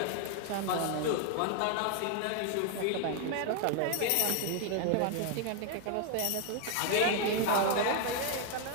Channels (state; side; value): different; both; correlation 0.00